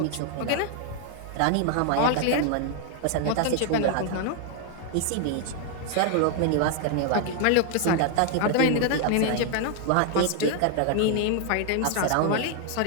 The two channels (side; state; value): both; different; correlation 0.00